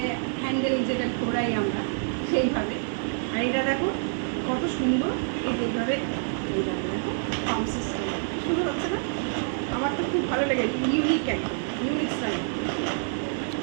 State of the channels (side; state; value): left; silent; 60 dB below the other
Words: হ্যান্ডেল যেটা ঘোরাই আমরা সেইভাবে, আর এটা দেখো কত সুন্দর এইভাবে এইভাবে দেখো পাম্প সিস্টেম শুরু হচ্ছে না। আমার তো খুব ভালো লেগেছে, ইউনিক একদম ইউনিক স্টাইল,